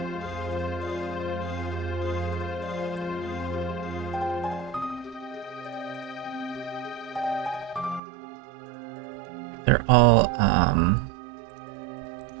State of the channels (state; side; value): drops out; left; at 8.0 s